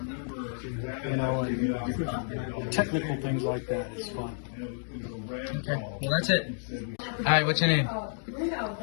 and technical things like that, it's fun. Okay, well that's it. Alright, what's your name?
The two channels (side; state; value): right; silent; digital silence